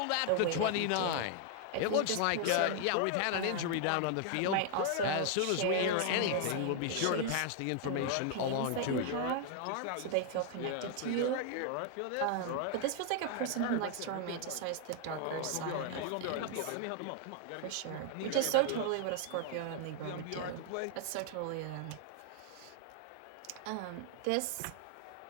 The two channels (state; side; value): different; both; correlation 0.00